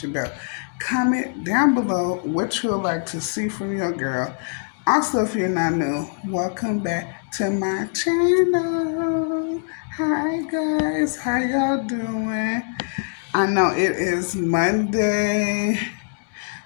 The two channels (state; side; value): silent; right; digital silence